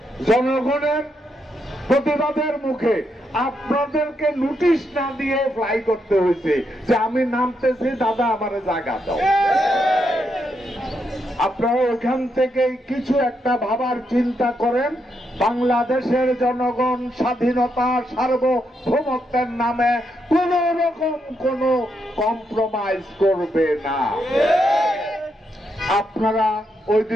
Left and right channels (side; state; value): both; normal; correlation 0.80